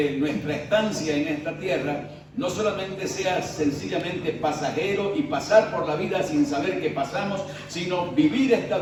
nuestra estancia en esta tierra no solamente sea sencillamente pasajero y pasar por la vida sin saber qué pasamos, sino vivir esta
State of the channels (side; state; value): both; identical; correlation 1.00